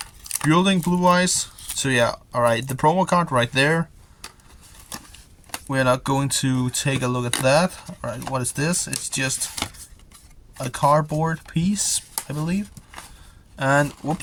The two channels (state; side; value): identical; both; correlation 1.00